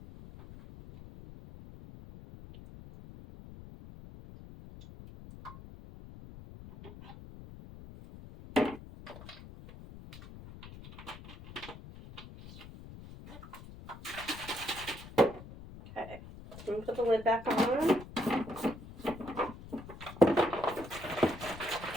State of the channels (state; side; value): noise; left; rumble, 15 dB below the sound